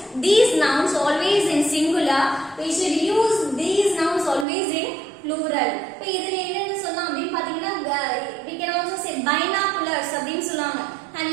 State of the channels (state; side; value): drops out; left; at 4.5 s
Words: these nouns always in singular. We should use these nouns always in plural. இப்போ இதுல என்னன்னு சொல்லலாம் அப்படின்னு பாத்தீங்கன்னா we can also say binoculars அப்படின்னு சொல்லுவாங்க. Have